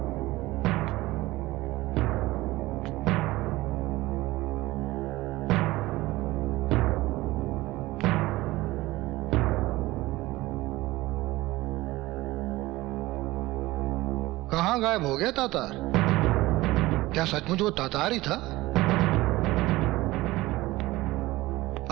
कहाँ गायब हो गया तातार? क्या सचमुच वो तातार ही था?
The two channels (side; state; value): left; quieter; 18.9 dB